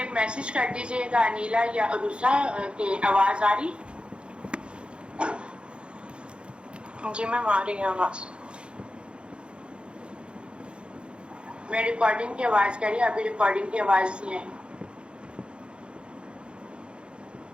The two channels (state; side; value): late; left; 0.056 ms